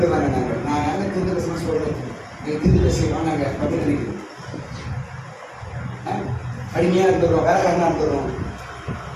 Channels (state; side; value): identical; both; correlation 1.00